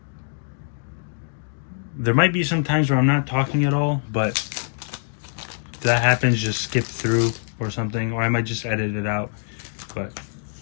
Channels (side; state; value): right; silent; digital silence